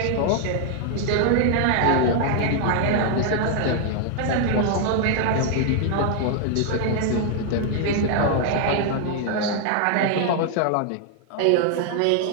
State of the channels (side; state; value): both; different; correlation 0.00